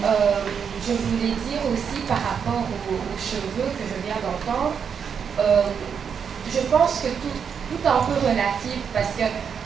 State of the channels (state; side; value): quieter; left; 7.0 dB